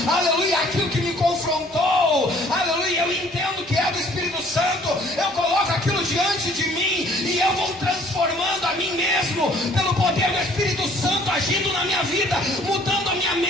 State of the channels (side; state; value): both; normal; correlation 0.57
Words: aleluia, aquilo que me confrontou, aleluia, eu entendo que é do Espírito Santo, eu coloco aquilo diante de mim, e eu vou transformando a mim mesmo, pelo poder do Espírito Santo, agindo na minha vida, mudando a minha